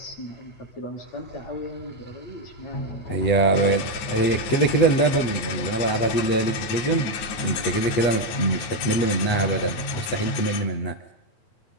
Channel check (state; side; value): late; right; 9.3 ms